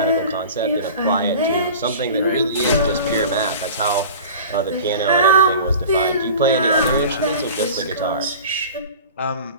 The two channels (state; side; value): inverted; both; correlation -0.38